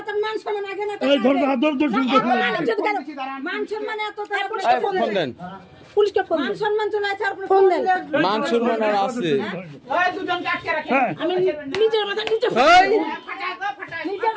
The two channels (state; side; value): identical; both; correlation 1.00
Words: ফোন দেন পুলিশকে ফোন মান সম্মান চলে আছে আর ফোন দেন মান সম্মান আর আছে ওই দুজন কাটকে রাখে আমি নিজের মাথা নিজে